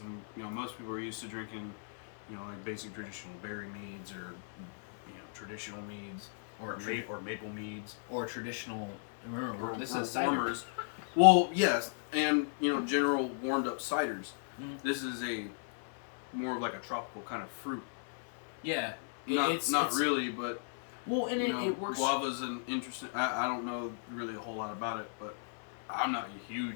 most people are used to drinking, like basic traditional berry meads or traditional meads or maple meads or traditional. Remember, this or is ciders. Well, yes, and general warmed up ciders. This is a more of like a tropical kind of fruit. Yeah, it's really, but well, and it works. Guava's an interesting. I don't know really a whole lot about it, but I'm not a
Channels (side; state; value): right; silent; 54 dB below the other